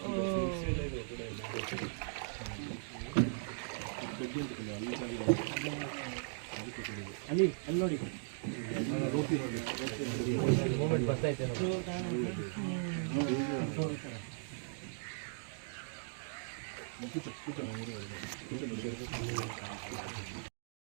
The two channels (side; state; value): left; silent; digital silence